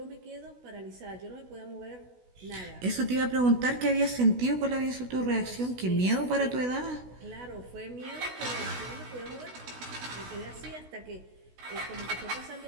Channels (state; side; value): late; left; 16 ms